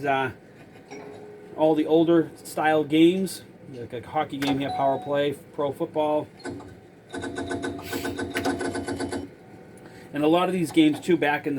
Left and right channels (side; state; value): both; identical; correlation 1.00